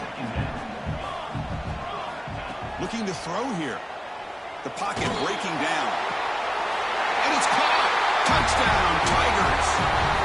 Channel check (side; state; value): both; identical; correlation 1.00